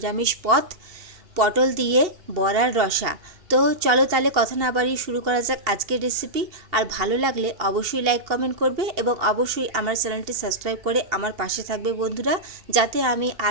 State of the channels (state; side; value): late; left; 2.7 ms